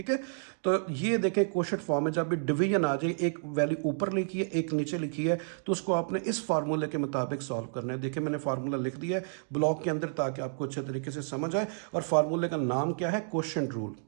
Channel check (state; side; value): silent; left; digital silence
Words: है। तो ये देखें क्वोशंट फॉर्म में जब भी डिवीजन आ जाए, एक वैल्यू ऊपर लिखी है एक नीचे लिखी है, तो उसको आपने इस फार्मूले के मुताबिक सॉल्व करना है। देखिए मैंने फार्मूला लिख दिया है ब्लॉक के अंदर ताकि आपको अच्छे तरीके से समझ आए। और फार्मूले का नाम क्या है, क्वोशंट रूल।